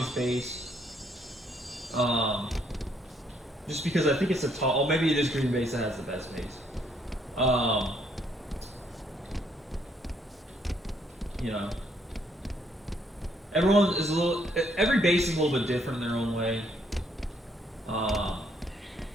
base. Just because I think it's a tall. Oh, maybe it is green base that has the best base. You know, everyone is every base is a little bit different in their own way.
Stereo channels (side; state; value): both; normal; correlation 0.70